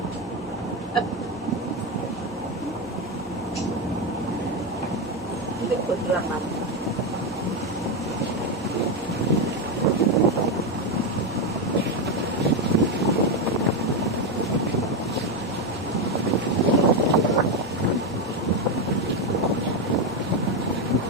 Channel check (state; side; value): normal; both; correlation 0.09